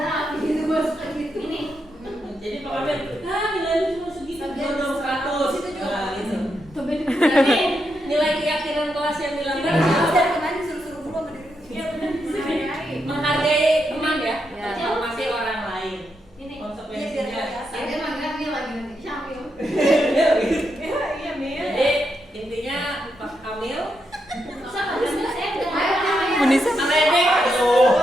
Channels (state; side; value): normal; both; correlation 0.83